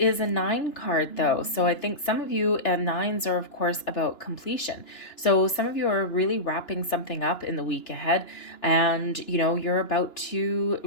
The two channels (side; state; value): right; late; 2.9 ms